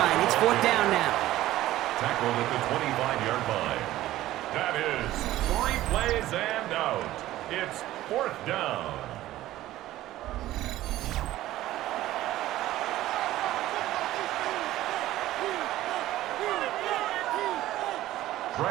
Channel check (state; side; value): quieter; left; 15.0 dB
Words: It's 4th down now. Tackled at the 25-yard line. That is 3 plays and out. It's 4th down.